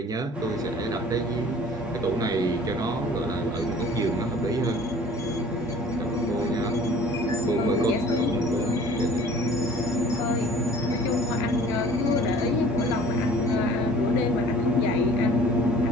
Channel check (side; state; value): both; normal; correlation 0.49